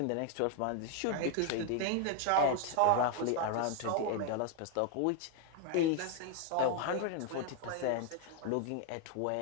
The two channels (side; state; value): both; different; correlation 0.00